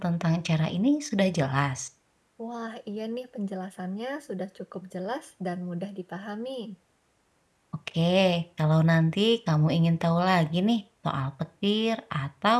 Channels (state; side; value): identical; both; correlation 1.00